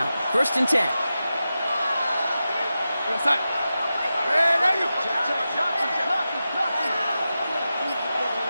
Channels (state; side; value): inverted; both; correlation -0.92